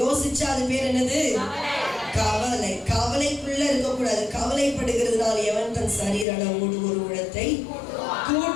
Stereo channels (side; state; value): right; drops out; at 6.2 s